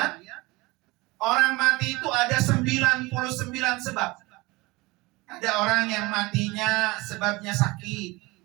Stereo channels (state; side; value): quieter; left; 22.8 dB